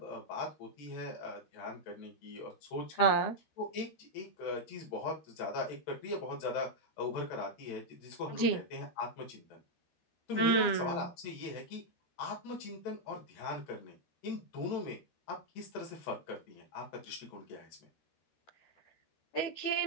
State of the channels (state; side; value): late; right; 12 ms